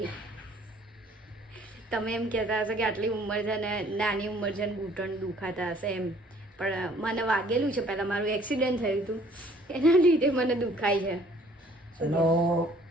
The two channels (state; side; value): normal; both; correlation 0.58